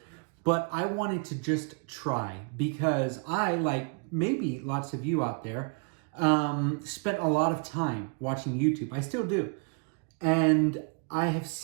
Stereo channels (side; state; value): left; quieter; 38.8 dB